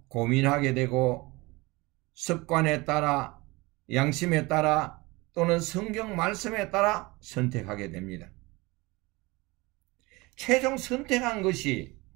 고민하게 되고 습관에 따라, 양심에 따라 또는 성경 말씀에 따라 선택하게 됩니다. 최종 선택한 것이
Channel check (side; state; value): left; quieter; 23.3 dB